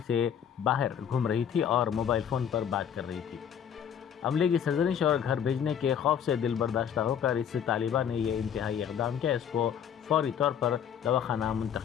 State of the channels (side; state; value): right; quieter; 8.6 dB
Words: से बाहर घूम रही थी और मोबाइल फ़ोन पर बात कर रही थी। अमले की सरजनिश और घर भेजने के खौफ से दिल बर्दाश्ता होकर इस तालिबा ने यह इंतहाई इक़दाम किया। इसको फौरी तौर पर दवाखाना